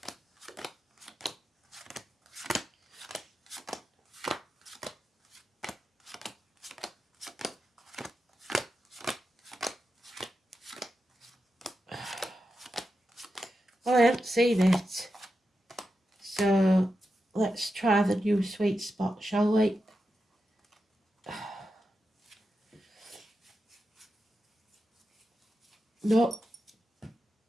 Well, I haven't seen it, so let's try the new sweet spot, shall we? No.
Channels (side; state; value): both; normal; correlation 0.89